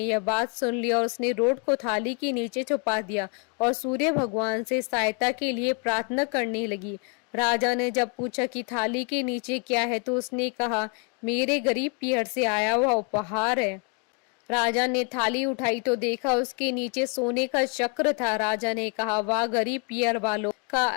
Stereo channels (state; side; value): quieter; right; 35.4 dB